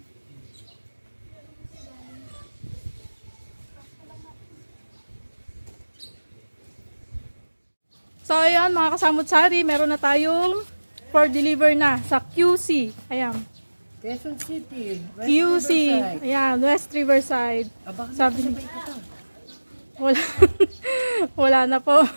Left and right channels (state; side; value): inverted; both; correlation -1.00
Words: lang yan. So ayan mga kasamot-sari, meron na tayong for deliver na sa QC. Ayan. Quezon City. West QC. Riverside. Ayan, West Riverside. Bakit Sabi sabay ka pa? Wala. Wala na po.